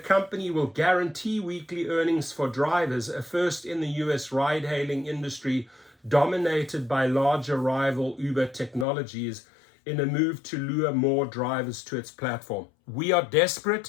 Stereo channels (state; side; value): drops out; right; at 8.8 s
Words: will guarantee weekly earnings for drivers, a first in the US ride-hailing industry dominated by larger rival Uber technologies, in a move to lure more drivers to its platform. We are